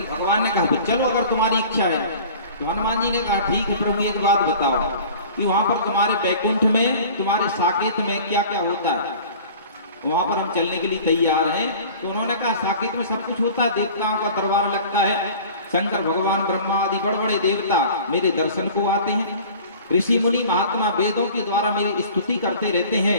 भगवान ने कहा चलो अगर तुम्हारी इच्छा है। तो हनुमान जी ने कहा ठीक है प्रभु, एक बात बताओ कि वहां पर तुम्हारे बैकुंठ में, तुम्हारे साकेत में क्या क्या होता है, वहां पर हम चलने के लिए तैयार हैं। तो उन्होंने कहा साकेत में सब कुछ होता है, देवताओं का दरबार लगता है, शंकर भगवान ब्रह्मा आदि बड़े बड़े देवता मेरे दर्शन को आते हैं, ऋषि मुनि महात्मा वेदों के द्वारा मेरी स्तुति करते रहते हैं,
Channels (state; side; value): inverted; both; correlation -0.44